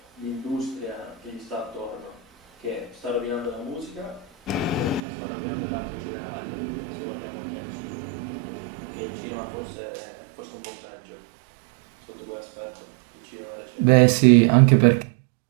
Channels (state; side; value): drops out; left; at 5.0 s